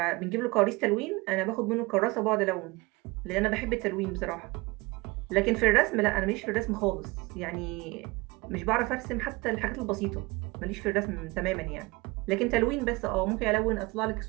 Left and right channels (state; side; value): quieter; left; 23.7 dB